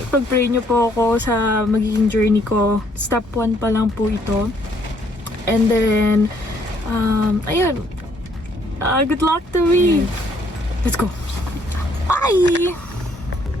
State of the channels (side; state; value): both; normal; correlation 0.67